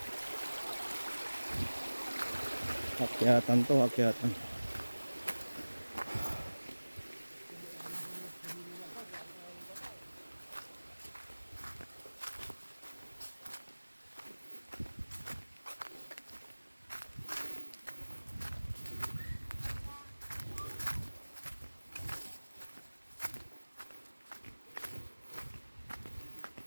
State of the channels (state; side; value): inverted; both; correlation -1.00